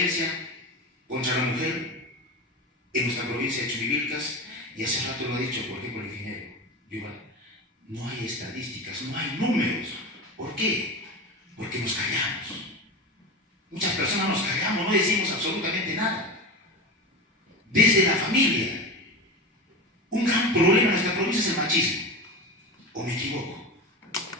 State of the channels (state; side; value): normal; both; correlation 0.25